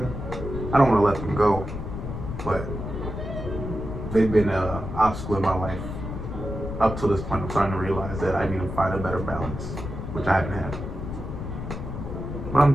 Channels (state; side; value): noise; left; rumble, 6 dB below the sound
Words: I don't want to let them go, but they've been an obstacle in my life up to this point. I'm starting to realize that I need to find a better balance, which I haven't had. But I'm